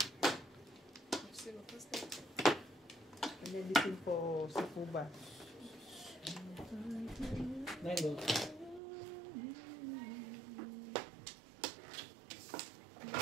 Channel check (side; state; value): left; drops out; at 8.8 s